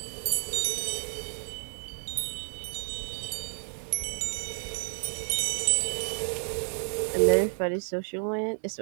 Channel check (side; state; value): left; silent; digital silence